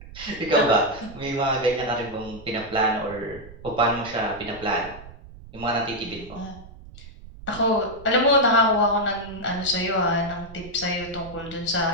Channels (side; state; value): right; noise; rumble, 17 dB below the sound